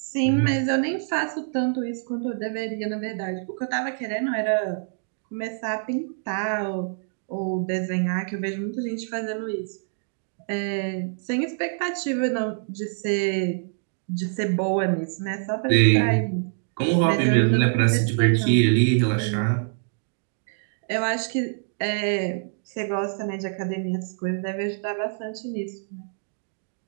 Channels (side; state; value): left; silent; digital silence